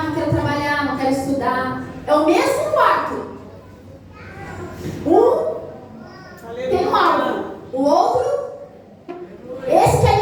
não quero trabalhar, não quero estudar. É o mesmo quarto. Tem um alvo. O outro, esse quer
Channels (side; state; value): both; identical; correlation 1.00